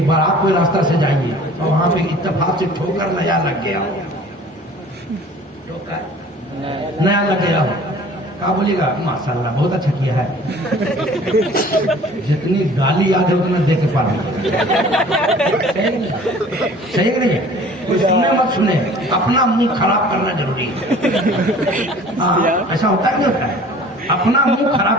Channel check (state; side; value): normal; both; correlation 0.48